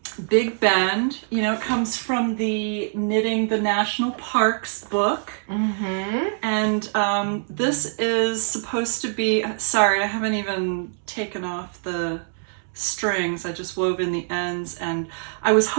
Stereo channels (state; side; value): silent; left; digital silence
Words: Big Bend. You know, it comes from the Knitting the National Parks book. Mm-hmm. And this is supposed to be, sorry, I haven't even taken off the strings. I just wove in the ends, and I was